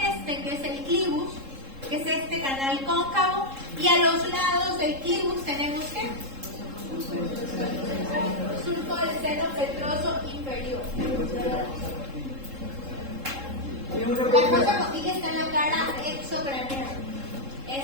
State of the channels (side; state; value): left; late; 3.7 ms